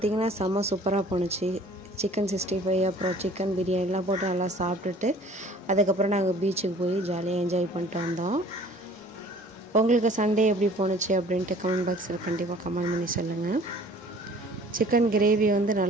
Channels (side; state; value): both; normal; correlation 0.51